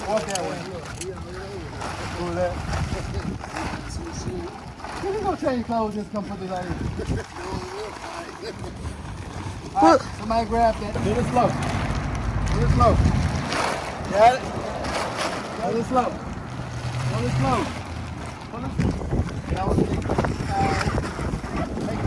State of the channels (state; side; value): identical; both; correlation 1.00